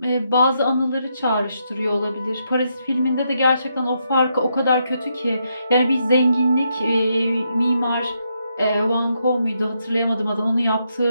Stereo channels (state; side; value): inverted; both; correlation -0.79